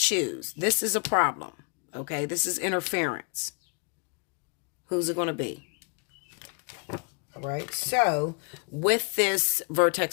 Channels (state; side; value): quieter; right; 38.7 dB